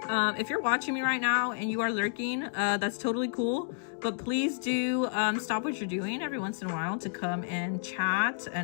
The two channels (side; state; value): right; silent; digital silence